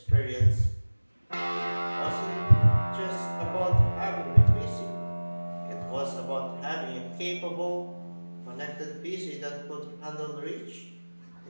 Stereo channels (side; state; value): both; inverted; correlation -1.00